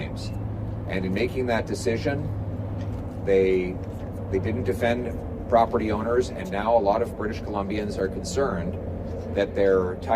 And in making that decision, they didn't defend property owners, and now a lot of British Columbians are concerned that their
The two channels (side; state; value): both; identical; correlation 1.00